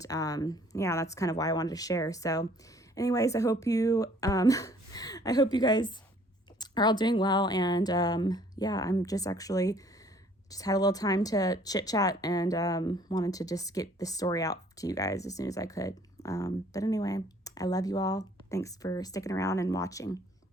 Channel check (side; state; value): both; normal; correlation 0.58